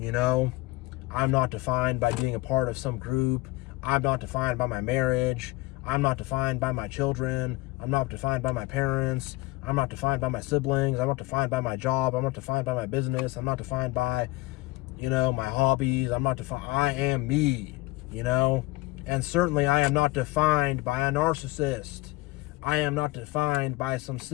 know. I'm not defined by being a part of some group. I'm not defined by my marriage. I'm not defined by my children. I'm not defined by my parents. I'm not defined by my siblings. I'm not defined by my job. I'm not defined by my business. I'm not defined by, you know, my hobbies. I'm not defined. I am me, you know. And certainly I am not defined by a narcissist. I am not defined by some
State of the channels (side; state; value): right; quieter; 20.2 dB